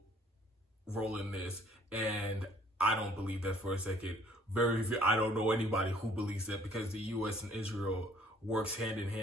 role in this, and I don't believe that for a second. I don't know anybody who believes that, because the U.S. and Israel works hand in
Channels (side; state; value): both; normal; correlation 0.58